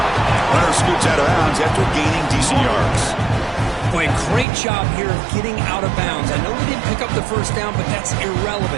Runner scoots out of bounds after gaining decent yards. Boy, great job here of getting out of bounds. I know they didn't pick up the first down, but that's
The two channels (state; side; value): drops out; left; at 4.5 s